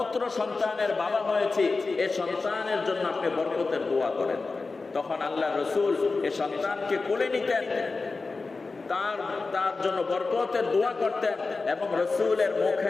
সন্তানের বাবা হয়েছি, এই সন্তানের জন্য আপনি বরকতের দোয়া করেন। তখন আল্লাহ রসুল এ সন্তানকে কোলে নিতেন, তার জন্য বরকতের দোয়া করতেন, এবং রসুলের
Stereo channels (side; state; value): right; quieter; 3.9 dB